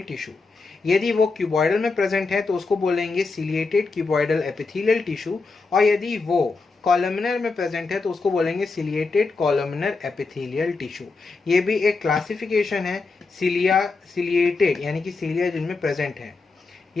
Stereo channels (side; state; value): right; quieter; 4.1 dB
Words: टिश्यू। यदि वो क्यूबॉइडल में प्रेजेंट है तो उसको बोलेंगे सिलिएटेड क्यूबॉइडल एपिथेलियल टिश्यू, और यदि वो कॉलमनर में प्रेजेंट है तो उसको बोलेंगे सिलिएटेड कॉलमनर एपिथेलियल टिश्यू। ये भी एक क्लासिफिकेशन है सिलिया सिलिएटेड यानी कि सिलिया जिनमें प्रेजेंट है।